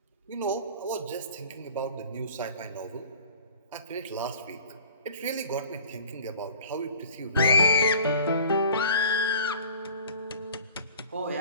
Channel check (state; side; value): inverted; both; correlation -0.46